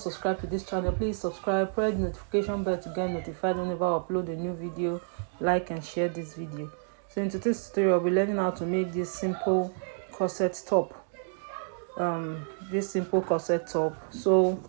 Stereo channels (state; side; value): silent; left; digital silence